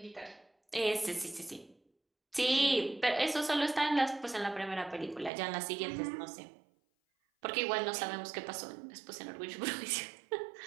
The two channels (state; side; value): drops out; left; at 5.3 s